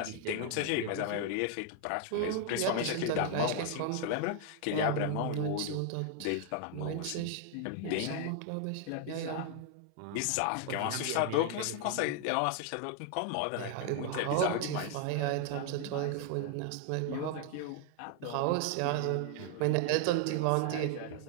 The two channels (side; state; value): both; different; correlation 0.00